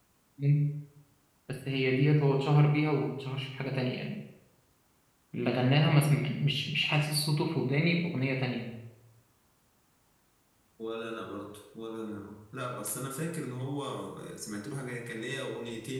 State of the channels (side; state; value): both; identical; correlation 1.00